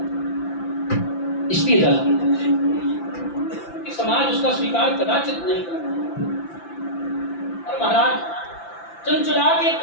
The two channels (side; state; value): right; late; 5.9 ms